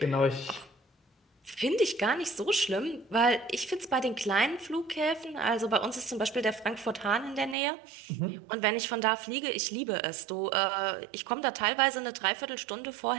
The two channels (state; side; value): drops out; left; at 7.6 s